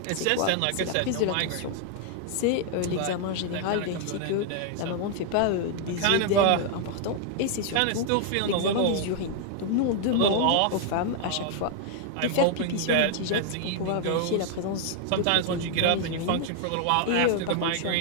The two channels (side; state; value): both; different; correlation -0.01